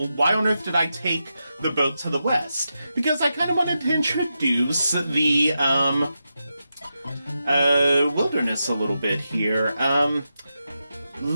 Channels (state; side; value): inverted; both; correlation -0.88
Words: why on earth did I take the boat to the west? Because I kind of wanted to introduce the, wilderness a little bit here.